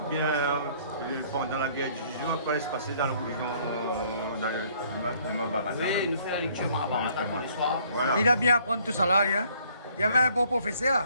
bien pendant la guerre du jour, quoi se passer dans la religion, dans le Mahabharata. oui, nous faisons la lecture Mahabharata tous les soirs. Voilà. Il a bien appris tout ça, là, hein. Il y avait un bon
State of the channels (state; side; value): inverted; both; correlation -0.62